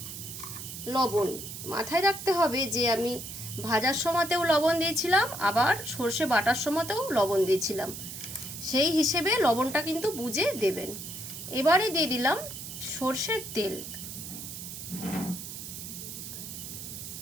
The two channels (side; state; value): right; noise; hiss, 9 dB below the sound